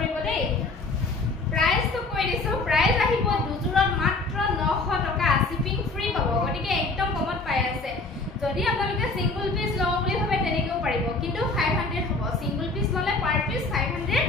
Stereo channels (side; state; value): right; quieter; 3.5 dB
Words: দেই প্ৰাইসটো কৈ দিছো প্ৰাইস আহিব দুজোৰত মাত্ৰ 900 টকা শিপিং ফ্ৰী পাব গতিকে একদম কমত পাই আছে যদি আপোনালোকে সিঙ্গল পিস লও বুলি ভাবে তেনেকেও পাৰিব কিন্তু 500 হ'ব সিঙ্গল পিস ললে পাৰ পিস 500